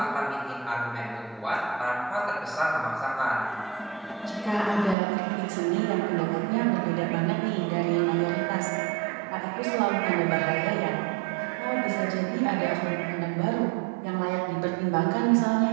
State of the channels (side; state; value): left; drops out; at 5.0 s